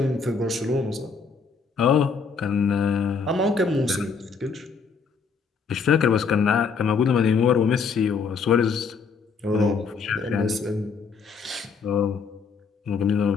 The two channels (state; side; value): quieter; right; 5.4 dB